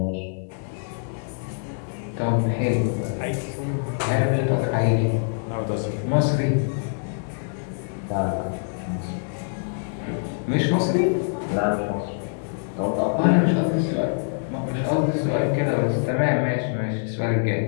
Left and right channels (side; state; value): right; silent; digital silence